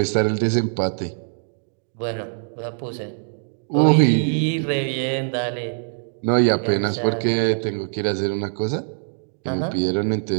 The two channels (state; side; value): silent; left; digital silence